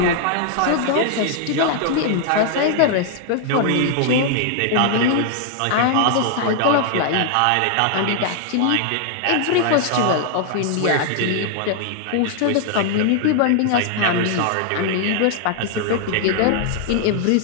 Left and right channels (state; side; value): different; both; correlation 0.00